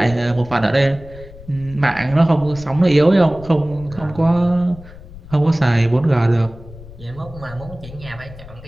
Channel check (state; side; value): noise; left; rumble, 17 dB below the sound